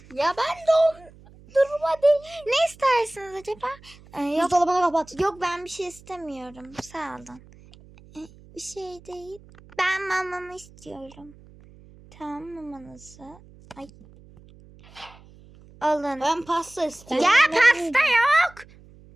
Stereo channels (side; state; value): right; noise; hum, 23 dB below the sound